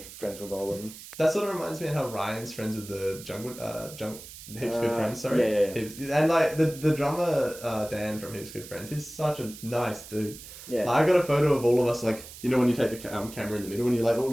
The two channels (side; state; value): right; noise; hiss, 15 dB below the sound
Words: friends with all of them. That sort of reminds me of how Ryan's friends with the Heaps Good Friends, sorry. Yeah. Heaps, and the drummer Dan from Heaps Good Friends, he's such a nice dude. Yeah. I got a photo of all of us, when you take the camera in the middle and you all